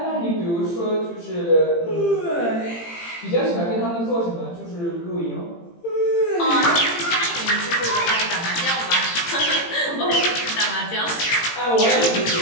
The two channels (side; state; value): right; late; 18 ms